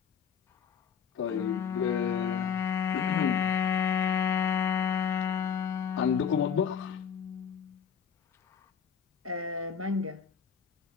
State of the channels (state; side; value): quieter; right; 7.4 dB